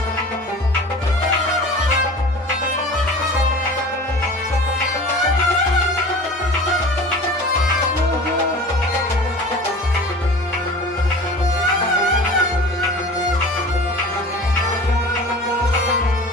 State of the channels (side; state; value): both; normal; correlation 0.39